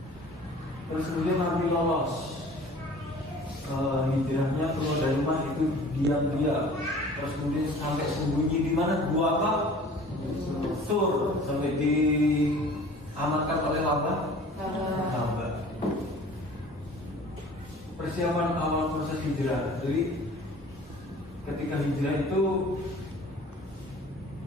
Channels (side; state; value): both; normal; correlation 0.46